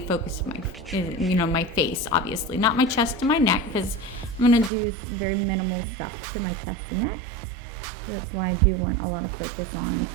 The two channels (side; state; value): left; drops out; at 4.7 s